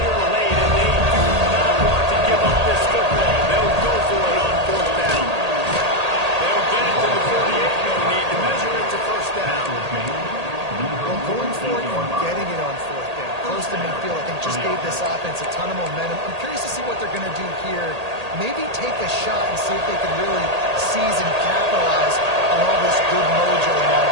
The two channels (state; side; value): late; left; 1.8 ms